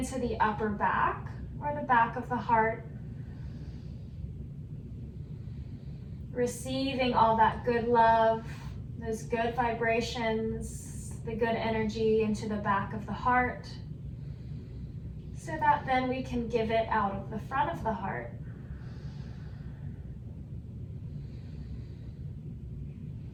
the upper back or the back of the heart. Receiving all that good love, those good vibrations, the good energy into the back of the heart, so that then we can give it out of the front of the heart.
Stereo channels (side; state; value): both; identical; correlation 1.00